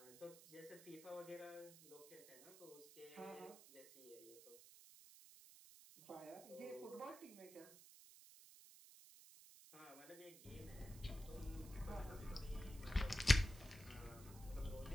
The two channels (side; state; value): right; noise; hiss, 17 dB below the sound